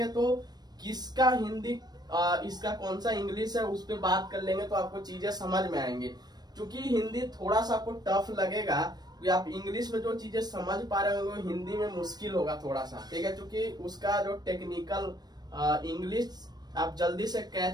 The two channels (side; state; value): left; late; 0.19 ms